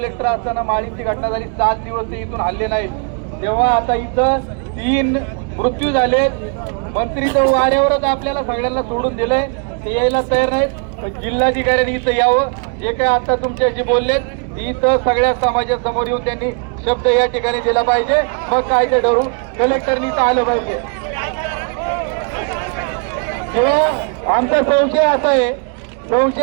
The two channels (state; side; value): quieter; left; 38.6 dB